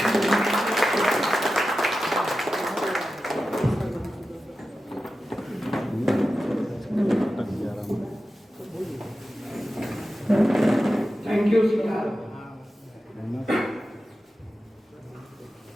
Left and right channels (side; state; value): both; normal; correlation 0.93